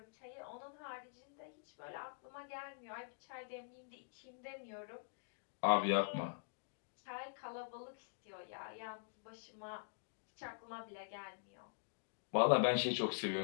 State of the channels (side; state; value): right; silent; digital silence